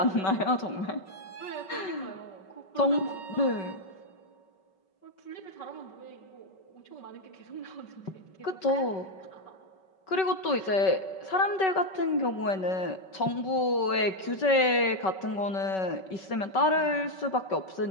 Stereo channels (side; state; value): right; late; 5.3 ms